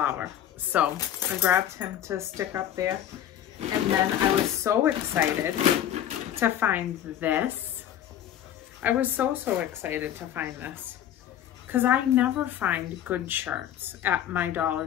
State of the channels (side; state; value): right; quieter; 11.0 dB